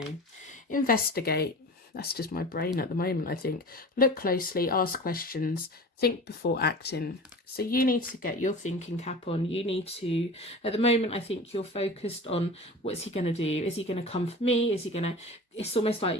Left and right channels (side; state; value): both; normal; correlation 0.35